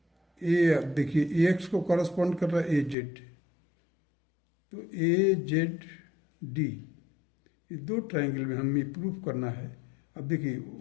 A. देखिए AX को कॉरस्पॉन्ड कर रहा है AZ, तो AZD. ये दो ट्राइंगल में हमें प्रूफ करना है. अब देखिए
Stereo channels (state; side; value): drops out; right; at 3.0 s